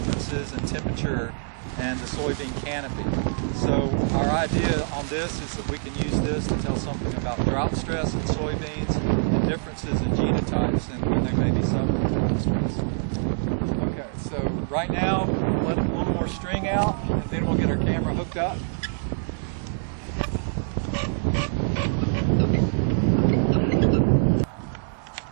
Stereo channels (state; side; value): silent; left; digital silence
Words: in temperature and the soybean canopy. So our idea on this is that we can use this to tell something about drought stress in soybeans and differences in genotypes and when they may be suffering drought stress. Okay, so right now we'll let a little more string out and then we'll get our camera hooked up.